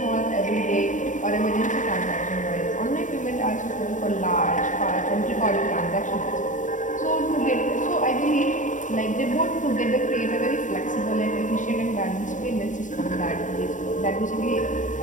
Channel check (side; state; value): right; late; 0.37 ms